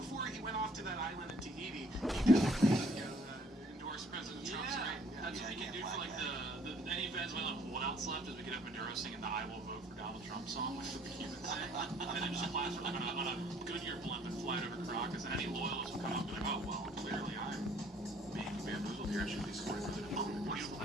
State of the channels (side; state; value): both; normal; correlation 0.60